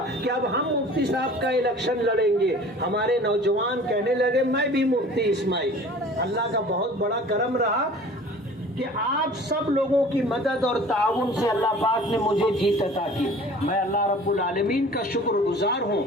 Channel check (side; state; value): both; normal; correlation 0.45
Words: कि अब हम मुफ्ती साहब का इलेक्शन लड़ेंगे। हमारे नौजवान कहने लगे मैं भी मुफ्ती इस्माइल। अल्लाह का बहुत बड़ा करम रहा कि आप सब लोगों की मदद और ताउन से अल्लाह पाक ने मुझे जीत अता की। मैं अल्लाह रब्बुल आलमीन का शुक्रगुजार हूँ